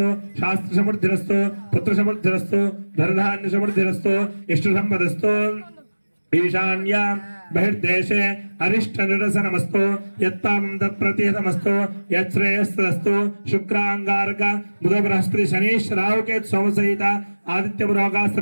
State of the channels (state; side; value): inverted; both; correlation -1.00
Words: शास्त्रसमृद्धिरस्तु पुत्रसमृद्धिरस्तु धनधान्यसमृद्धिरस्तु इष्टसम्पदस्तु ईशान्या बहिर्देशे अरिष्टनिरसनमस्तु यत्तां तत्प्रतिहतमस्तु यच्छ्रेयस्तस्तु शुक्रांगारक बुध बृहस्पति शनीश राहुकेतु सोमसहित आदित्यपुरोगा